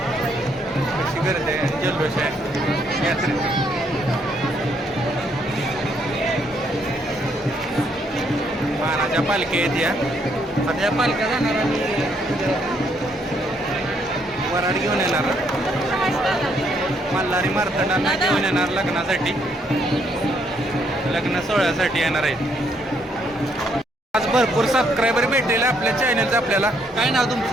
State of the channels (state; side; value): normal; both; correlation 0.71